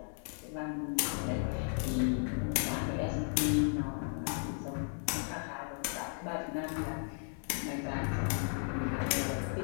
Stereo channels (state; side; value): silent; right; 54 dB below the other